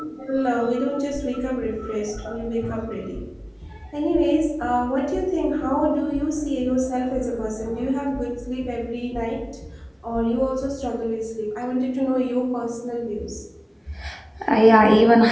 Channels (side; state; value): both; identical; correlation 1.00